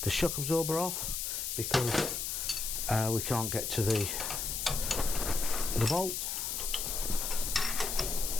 the shock absorber off because we can't get to the bolt.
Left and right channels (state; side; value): noise; left; hiss, 2 dB below the sound